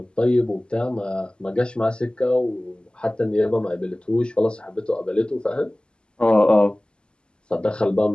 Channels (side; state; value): right; late; 0.049 ms